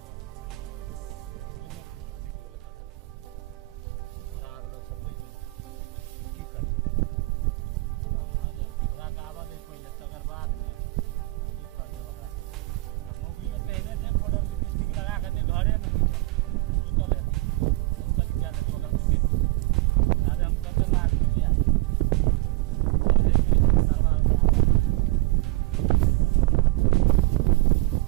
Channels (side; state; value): left; quieter; 22.4 dB